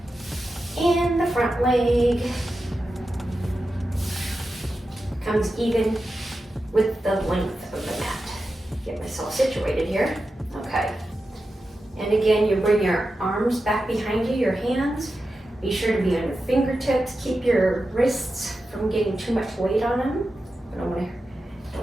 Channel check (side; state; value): both; normal; correlation 0.91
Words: and the front leg comes even with the length of the mat. Get myself situated here. Okay. And again, you bring your arms back behind you, your hands. Be sure to be on your fingertips. Keep your wrists from getting too much weight on them. I don't